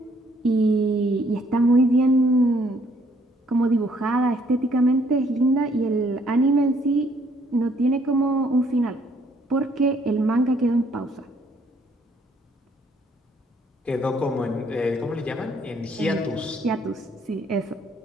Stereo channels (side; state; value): both; normal; correlation 0.66